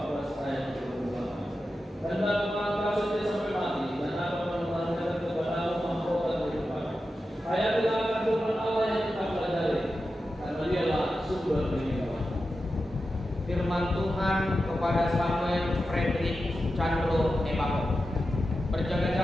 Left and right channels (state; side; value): normal; both; correlation 0.91